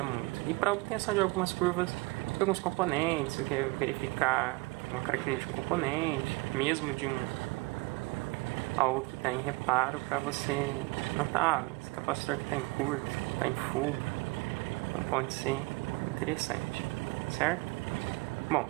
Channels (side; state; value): left; quieter; 23.9 dB